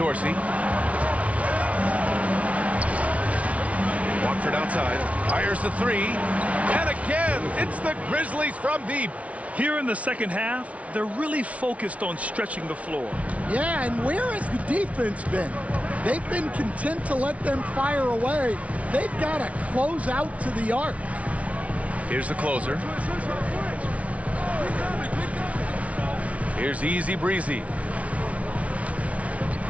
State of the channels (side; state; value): left; late; 0.065 ms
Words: Watford outside. Fires the 3. And again, it's the Grizzlies from deep. Here in the second half, they're really focused on stretching the floor. Yeah, and where has the defense been? They've been content to let them fire away. They've got to close out to the arc. Here's the closer. Here's Easy Breezy.